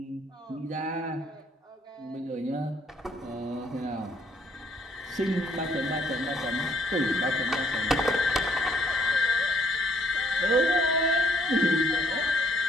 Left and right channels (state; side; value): normal; both; correlation 0.67